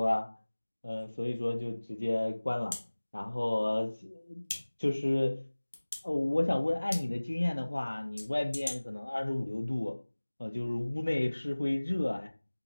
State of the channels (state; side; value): inverted; both; correlation -1.00